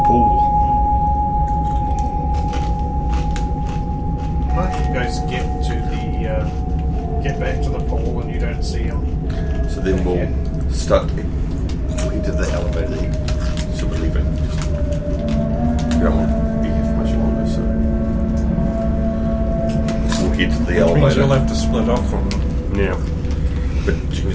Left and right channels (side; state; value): both; identical; correlation 1.00